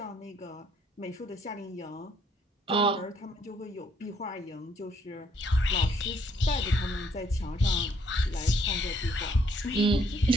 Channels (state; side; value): normal; both; correlation 0.68